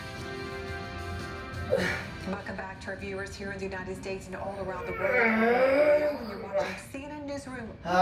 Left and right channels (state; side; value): identical; both; correlation 1.00